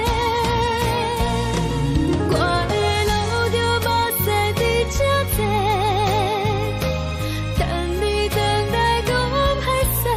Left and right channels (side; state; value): both; identical; correlation 1.00